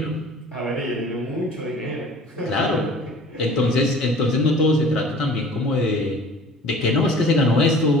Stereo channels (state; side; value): normal; both; correlation 0.46